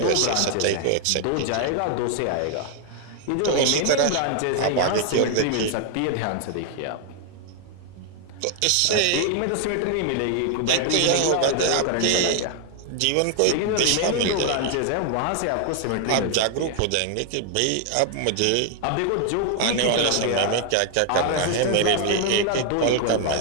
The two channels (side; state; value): both; different; correlation 0.00